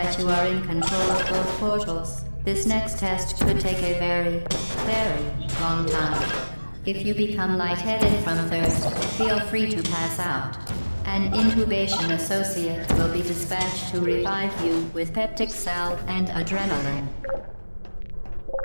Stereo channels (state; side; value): inverted; both; correlation -1.00